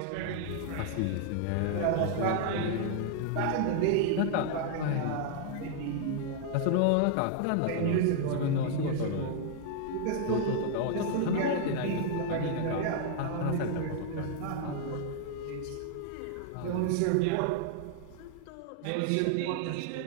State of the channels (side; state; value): both; different; correlation 0.00